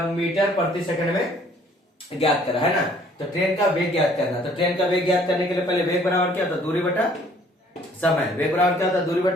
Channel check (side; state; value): both; normal; correlation 0.58